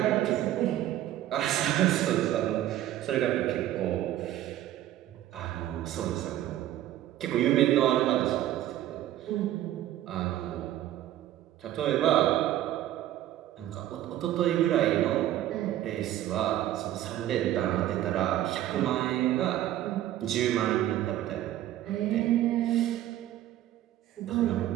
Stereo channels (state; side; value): quieter; left; 13.1 dB